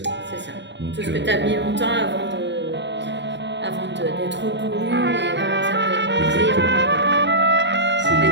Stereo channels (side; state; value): left; late; 0.52 ms